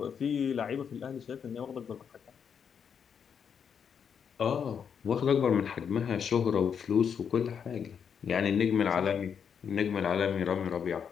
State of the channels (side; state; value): right; quieter; 7.3 dB